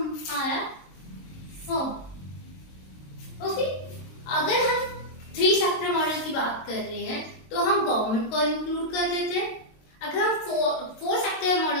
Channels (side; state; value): right; late; 22 ms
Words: फर्म। ओके, अगर हम 3 सेक्टर मॉडल की बात कर रहे हैं तो हम गवर्नमेंट को इंक्लूड कर देते हैं। अगर हम 4 सेक्टर